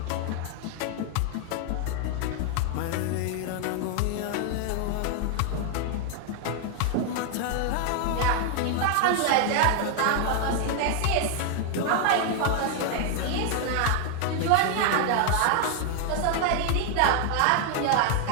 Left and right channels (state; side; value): different; both; correlation 0.00